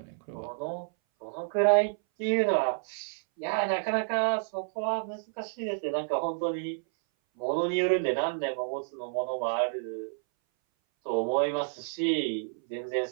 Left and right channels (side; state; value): left; silent; 58 dB below the other